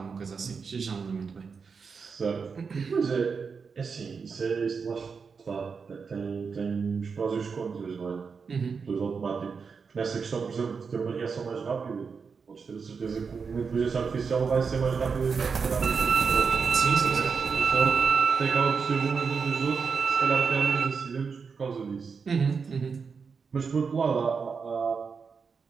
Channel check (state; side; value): quieter; left; 5.5 dB